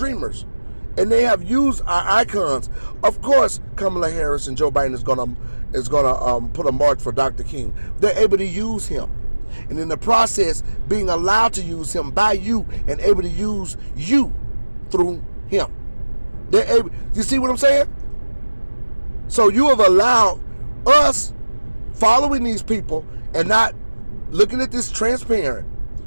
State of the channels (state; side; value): inverted; both; correlation -1.00